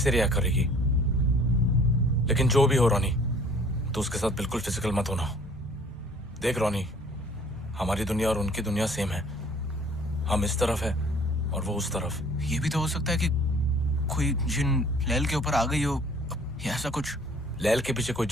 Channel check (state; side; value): normal; both; correlation 0.54